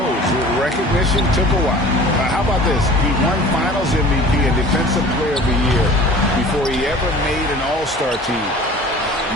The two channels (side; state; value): both; normal; correlation 0.44